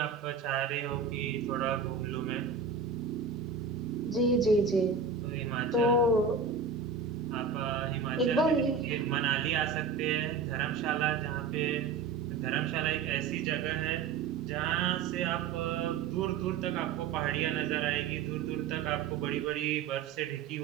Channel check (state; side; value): quieter; left; 5.7 dB